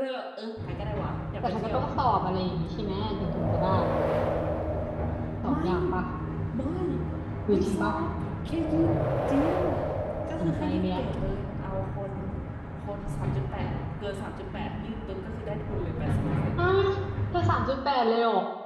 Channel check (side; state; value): both; identical; correlation 1.00